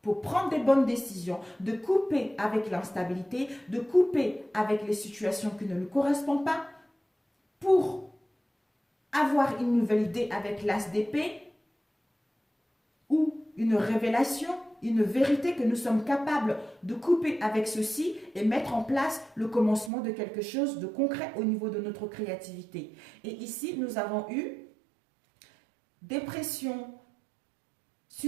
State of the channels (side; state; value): left; drops out; at 19.9 s